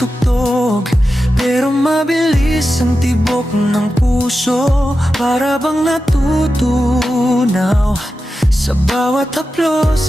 pero mabilis ang tibok ng puso. Para bang natutunaw sa bawat haplos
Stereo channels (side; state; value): both; normal; correlation 0.91